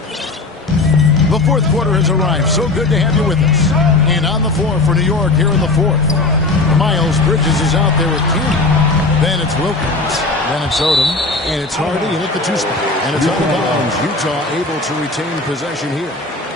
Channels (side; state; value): right; quieter; 3.3 dB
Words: The fourth quarter has arrived. So good to have you with us. And on the floor for New York here in the fourth. Miles Bridges is out there with King. Then it's Wilkins. Then it's Odom. And it's Hardy and at the two spot. And it's out of bounds. Utah able to retain possession here.